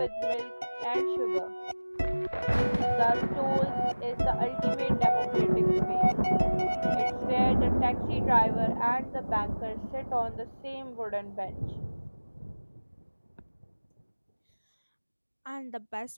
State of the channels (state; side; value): inverted; both; correlation -1.00